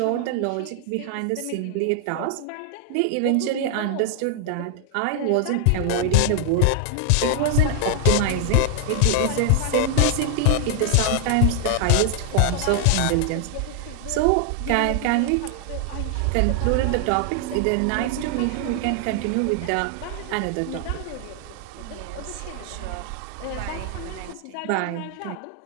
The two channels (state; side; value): different; both; correlation 0.00